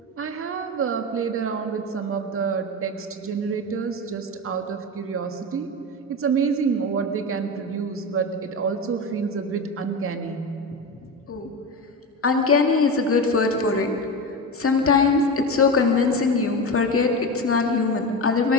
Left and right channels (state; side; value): normal; both; correlation 0.22